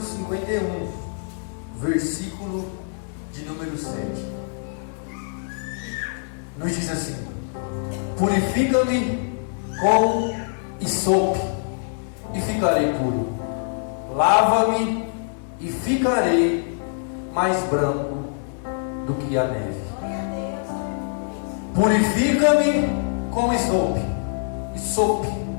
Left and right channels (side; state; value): right; silent; 63 dB below the other